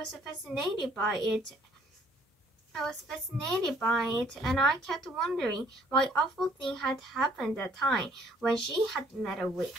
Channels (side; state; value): both; normal; correlation 0.61